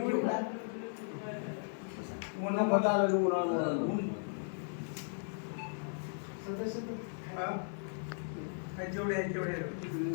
घेऊ. जेवढे आहेत तेवढे.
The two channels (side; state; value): right; silent; digital silence